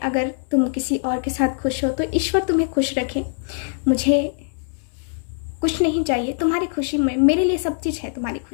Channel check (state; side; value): silent; right; 64 dB below the other